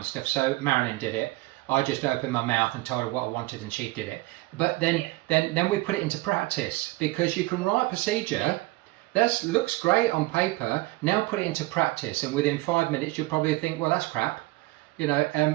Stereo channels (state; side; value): quieter; left; 20.8 dB